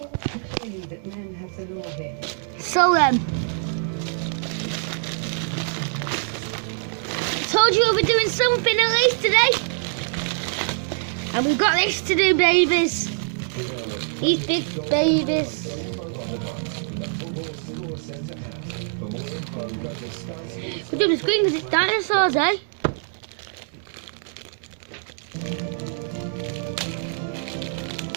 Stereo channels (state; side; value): silent; left; digital silence